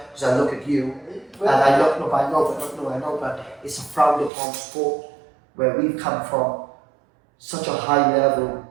because I look at you, and I know, but it's a frowned upon sport where we've come from such a high level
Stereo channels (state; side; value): drops out; left; at 4.3 s